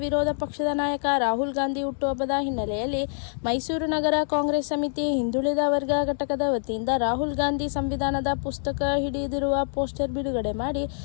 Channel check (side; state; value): right; silent; digital silence